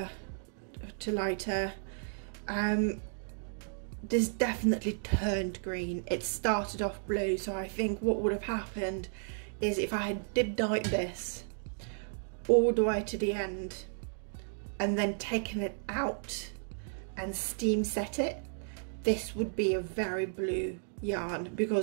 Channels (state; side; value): silent; left; digital silence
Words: to lighter. This definitely turned green. It started off blue, so I think what would have happened is if I had dip dyed this all the way to the end and then taken it out and steam set it, this would be a very blue yarn,